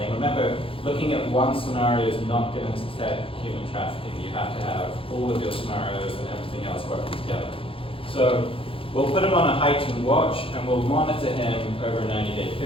Remember, looking at one scenario is not going to detect human trafficking. You have to have all of your scenarios and everything else working together. So we'll put him on a heightened watch, and we'll monitor him over a 90-day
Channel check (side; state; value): right; late; 0.26 ms